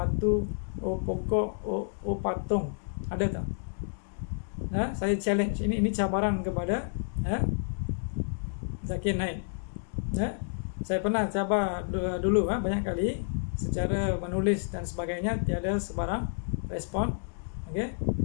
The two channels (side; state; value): right; silent; digital silence